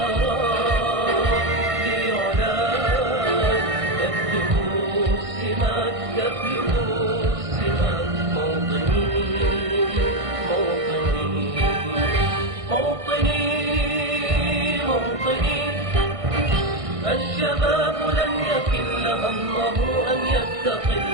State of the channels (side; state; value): left; late; 1.6 ms